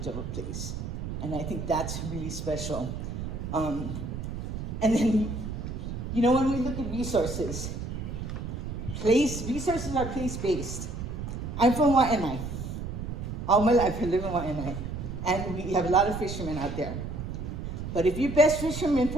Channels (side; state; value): right; noise; rumble, 6 dB below the sound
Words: of a place. And I think that's really special. And then, when we look at resources are place-based. I'm from Waianae. All my life I live in Waianae. And we have a lot of fishermen out there. But if your best fisherman